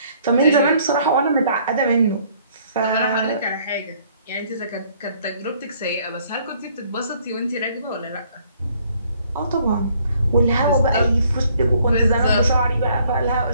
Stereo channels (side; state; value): both; inverted; correlation -0.63